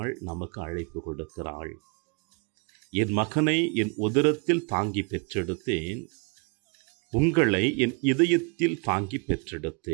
நமக்கு அழைப்பு கொடுக்கிறாள். என் மகனை என் உதரத்தில் தாங்கி பெற்றெடுத்தேன், உங்களை என் இதயத்தில் தாங்கி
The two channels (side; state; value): left; quieter; 33.9 dB